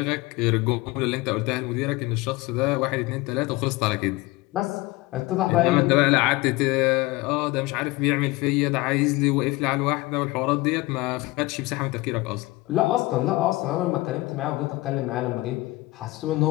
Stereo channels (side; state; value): right; quieter; 20.8 dB